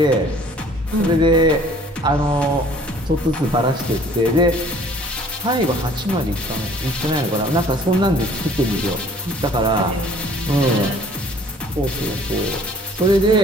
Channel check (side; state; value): both; normal; correlation 0.54